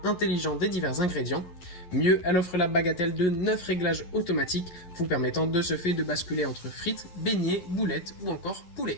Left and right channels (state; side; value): late; right; 11 ms